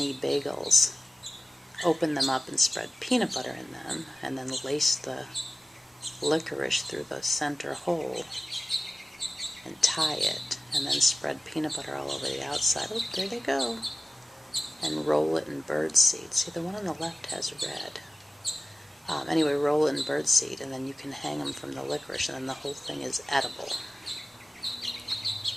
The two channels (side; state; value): both; normal; correlation 0.96